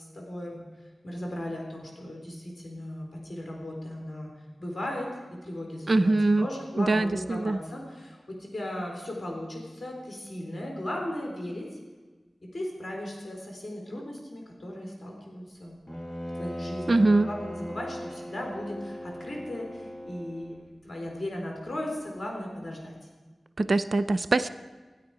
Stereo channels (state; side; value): normal; both; correlation 0.96